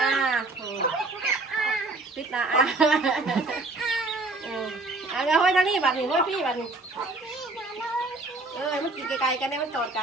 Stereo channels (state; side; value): quieter; left; 3.2 dB